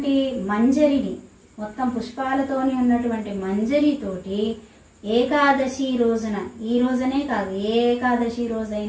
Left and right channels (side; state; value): both; identical; correlation 1.00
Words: మంజరిని, మొత్తం పుష్పాలతోని ఉన్నటువంటి మంజరితోటి ఏకాదశి రోజున, ఈ రోజునే కాదు ఏ ఏకాదశి